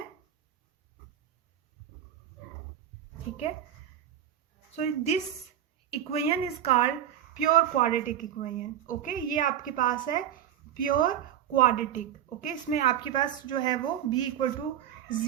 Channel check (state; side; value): quieter; left; 10.5 dB